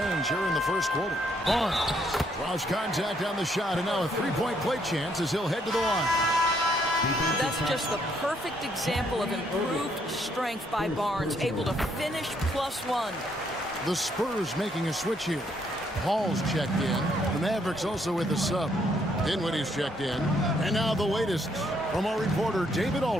here in the first quarter. Barnes draws contact on the shot, and now a three-point play chance as he'll head to the line. That's just the perfect example of improved strength by Barnes, able to finish +1. The Spurs making a switch here. Hall's checked in. The Mavericks also with a sub. Dinwiddie's checked in. And now the latest from our reporter, David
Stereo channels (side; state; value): both; normal; correlation 0.71